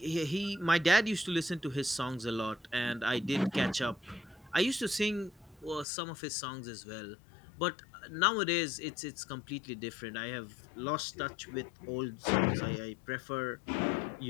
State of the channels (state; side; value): drops out; right; at 5.9 s